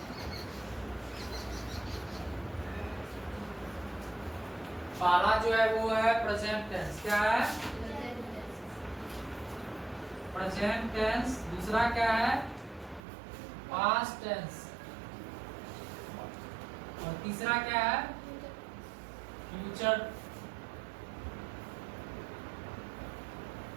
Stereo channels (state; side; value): drops out; left; at 13.0 s